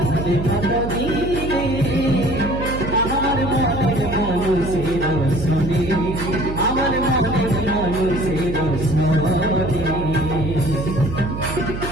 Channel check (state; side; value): noise; right; hum, 6 dB below the sound